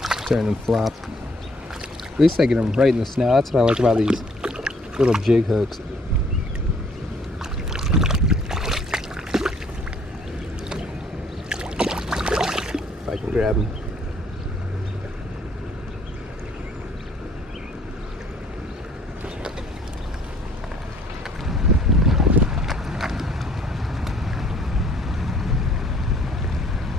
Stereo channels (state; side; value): normal; both; correlation 0.61